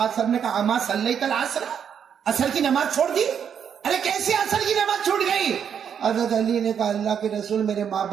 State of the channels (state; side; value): quieter; left; 7.9 dB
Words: علیہ وسلم نے کہا, اما صلیت العصر, عصر کی نماز چھوڑ دی؟ ارے کیسے عصر کی نماز چھوٹ گئی؟ حضرت علی نے کہا, اللہ کے رسول میرے ماں